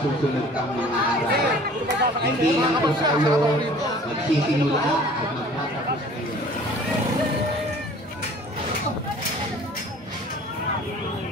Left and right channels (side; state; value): both; normal; correlation 0.48